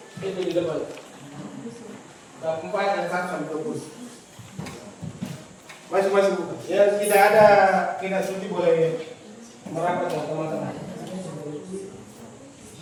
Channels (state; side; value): identical; both; correlation 1.00